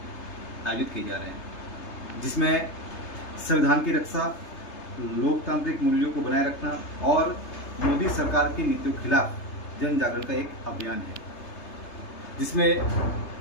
आयोजित किए जा रहे हैं, जिसमें संविधान की रक्षा, लोकतांत्रिक मूल्यों को बनाए रखना और मोदी सरकार की नीतियों के खिलाफ जन जागरण का एक अभियान है, जिसमें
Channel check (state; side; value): late; right; 3.3 ms